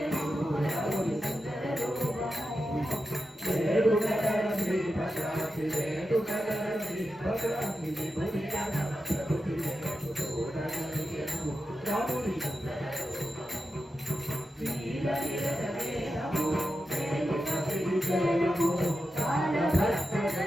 రాముని సుందర రూపము వేడుకల శ్రీ భద్రాద్రి వేడుకల శ్రీ భద్రాద్రి విభునిగా ప్రభుతి చూడగలిగెను రాముని సుందర రూపము నీలనిరవేదము వేలుక విజయము కాల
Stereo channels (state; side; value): normal; both; correlation 0.89